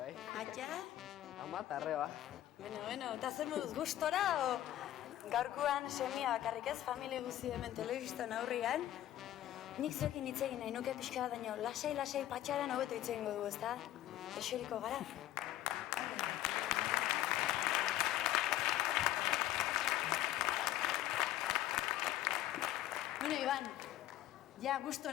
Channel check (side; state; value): right; quieter; 13.5 dB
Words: Atxa? Ama, tarreba. Bueno, eta zer moduz gustora, o gaurkoan semia bakarrik ez, familia guzi hemen telebistan aurrian. Nik zuekin hitz egin nahi nuke pixka bat daño, lasai patxaran hobeto hitz egingo dugu, ez da? Eseriko gara. Bueno, Iban, ja